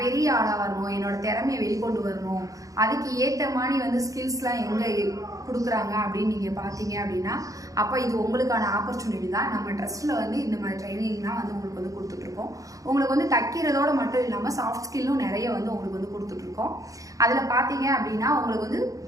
பெரிய ஆளாக வரணும், என்னோட திறமையை வெளிக்கொண்டு வரணும், அதுக்கு ஏற்ற மாதிரி வந்து ஸ்கில்ஸ்லாம் எங்கே கொடுக்குறாங்க அப்படின்னு நீங்கள் பார்த்தீங்க அப்படின்னா, அப்போ இது உங்களுக்கான ஆப்பர்ச்சுனிட்டி தான். நம்ம ட்ரஸ்ட்டில் வந்து இந்த மாதிரி ட்ரைனிங்லாம் வந்து உங்களுக்கு வந்து கொடுத்துட்ருக்கோம். உங்களுக்கு வந்து தைக்கிறதோடு மட்டும் இல்லாமல் சாஃப்ட் ஸ்கில்லும் நிறைய வந்து உங்களுக்கு வந்து கொடுத்துட்ருக்கோம். அதில் பார்த்தீங்க அப்படின்னா உங்களுக்கு வந்து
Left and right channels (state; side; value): late; left; 0.16 ms